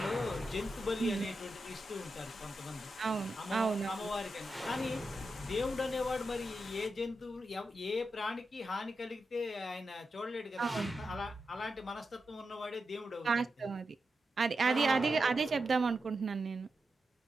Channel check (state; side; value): normal; both; correlation 0.88